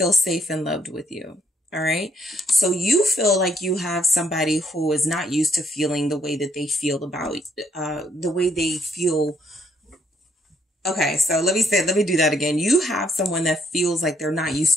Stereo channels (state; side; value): normal; both; correlation 0.71